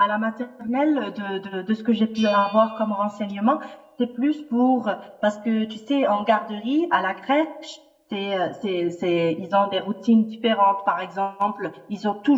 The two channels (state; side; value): identical; both; correlation 1.00